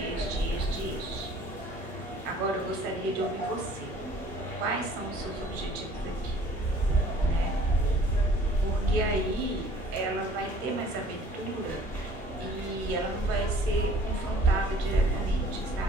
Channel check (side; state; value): both; normal; correlation 0.53